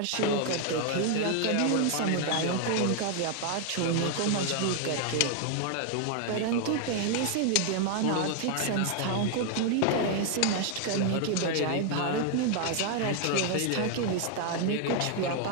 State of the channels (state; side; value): different; both; correlation 0.00